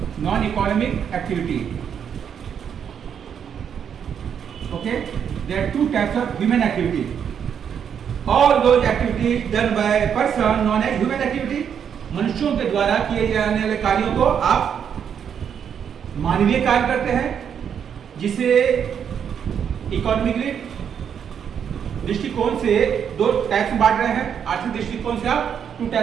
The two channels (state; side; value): quieter; left; 8.0 dB